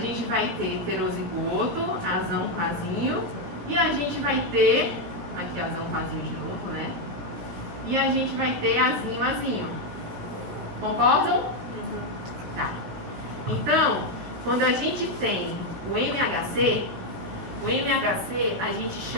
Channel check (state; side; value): late; left; 17 ms